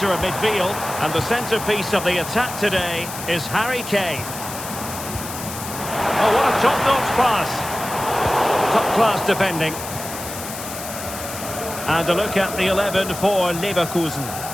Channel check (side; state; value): left; noise; hiss, 9 dB below the sound